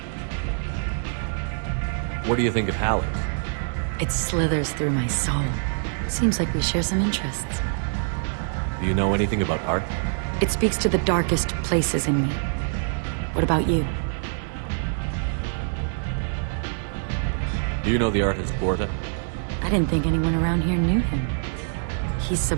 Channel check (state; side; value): silent; left; 62 dB below the other